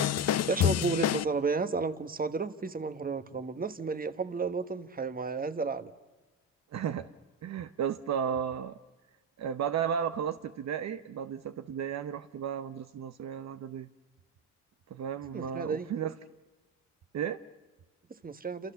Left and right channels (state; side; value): normal; both; correlation 0.16